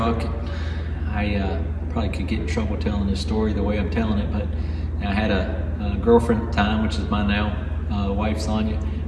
I probably could get in trouble telling this story the way I'm telling it, but I had a girlfriend at the time, which is my now wife, Sonia.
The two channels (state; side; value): identical; both; correlation 1.00